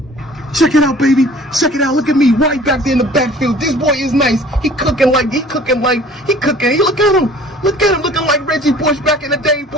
Check it out, baby. Check it out. Look at me right back there in the backfield. This boy is nice. He cooking. Look at him. Looking like Reggie Bush back in the day,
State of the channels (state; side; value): normal; both; correlation 0.49